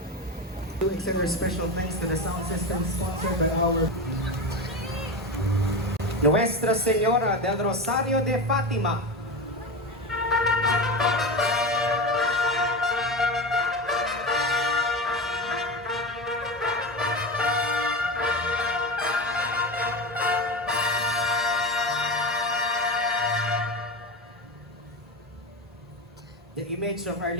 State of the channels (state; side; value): normal; both; correlation 0.22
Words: To extend our special thanks to the sound system sponsored by our Nuestra Señora del Rosario de Fatima. The image of Our